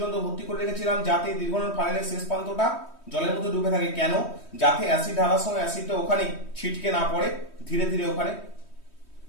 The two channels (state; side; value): late; right; 3.1 ms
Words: ভর্তি করে রেখেছিলাম যাতে দীর্ঘনল ফানেলের শেষ প্রান্তটা জলের মধ্যে ডুবে থাকে। কেন? যাতে অ্যাসিড ঢালার সময় অ্যাসিডটা ওখানে ছিটকে না পড়ে, ধীরে ধীরে ওখানে